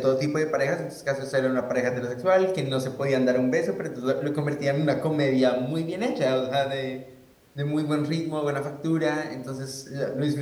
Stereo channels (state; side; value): identical; both; correlation 1.00